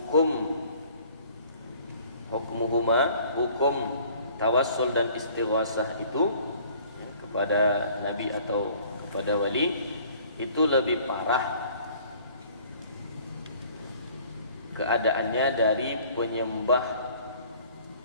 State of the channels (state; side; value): inverted; both; correlation -0.53